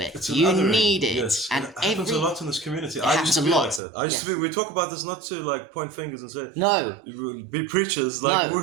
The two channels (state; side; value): drops out; left; at 3.8 s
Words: it. It's an You othering, need it. yes. And It happens a lot in this community. I happens used to a be lot, like that. I used to be. We talk about this not to like point fingers and say No. be preachers. Like